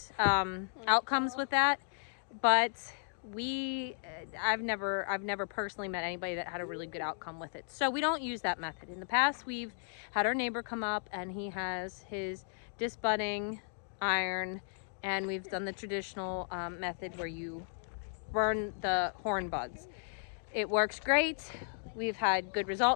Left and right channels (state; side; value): silent; right; digital silence